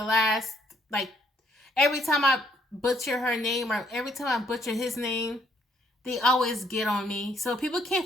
last, like, every time I butcher her name or every time I butcher his name, they always get on me. So people can't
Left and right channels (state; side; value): normal; both; correlation 0.68